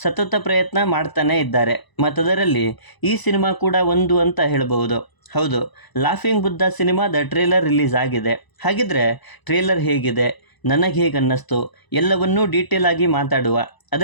ಸತತ ಪ್ರಯತ್ನ ಮಾಡ್ತಾನೇ ಇದ್ದಾರೆ. ಮತ್ತದರಲ್ಲಿ ಈ ಸಿನಿಮಾ ಕೂಡ ಒಂದು ಅಂತ ಹೇಳ್ಬೋದು. ಹೌದು, ಲಾಫಿಂಗ್ ಬುದ್ಧ ಸಿನಿಮಾದ ಟ್ರೇಲರ್ ರಿಲೀಸ್ ಆಗಿದೆ. ಹಾಗಿದ್ರೆ ಟ್ರೇಲರ್ ಹೇಗಿದೆ, ನನಗೆ ಹೇಗೆ ಅನ್ನಿಸ್ತು ಎಲ್ಲವನ್ನೂ ಡೀಟೇಲ್ ಆಗಿ ಮಾತಾಡುವ.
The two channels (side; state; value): right; late; 1.0 ms